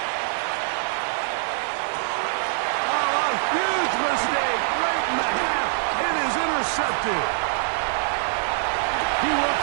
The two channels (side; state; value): left; silent; digital silence